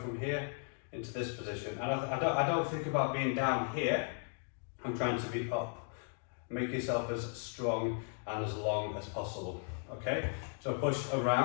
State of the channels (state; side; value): silent; right; 54 dB below the other